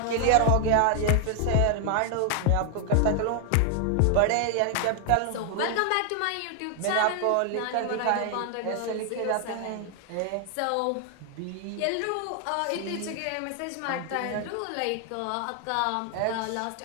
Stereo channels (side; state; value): both; different; correlation 0.00